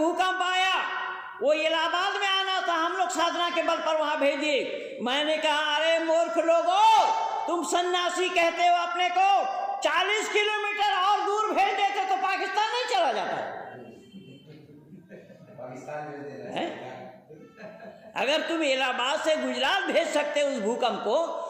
आया वो इलाहाबाद में आना था, हम लोग साधना के बल पर वहां भेज दिए। मैंने कहा अरे मूर्ख लोगों, तुम सन्यासी कहते हो अपने को, 40 किलोमीटर और दूर भेज देते तो पाकिस्तान नहीं चला जाता। पाकिस्तान भेज दे रहे हैं। अगर तुम इलाहाबाद से गुजरात भेज सकते उस भूकंप को,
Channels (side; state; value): both; identical; correlation 1.00